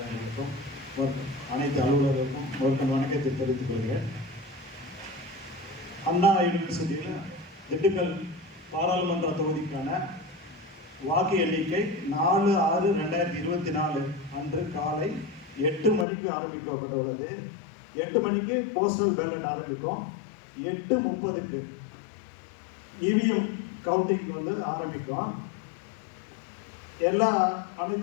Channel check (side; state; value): right; drops out; at 16.1 s